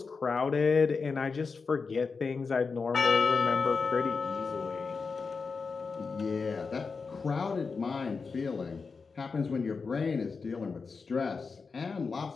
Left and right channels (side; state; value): right; quieter; 4.8 dB